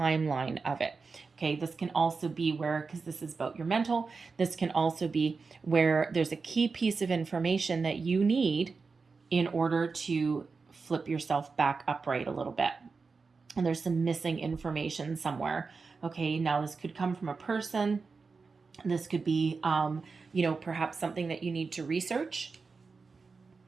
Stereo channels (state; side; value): quieter; left; 4.6 dB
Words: of it. Okay, this can also be where, because this is about your mental, this can also be where there's a key piece of information that you need in order to flip yourself back upright a little bit. And there's some missing information somewhere. Okay, now this could come from a person. This could be, perhaps something that you need to research.